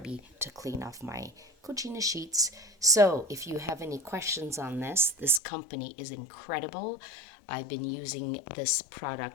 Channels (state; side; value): drops out; right; at 5.4 s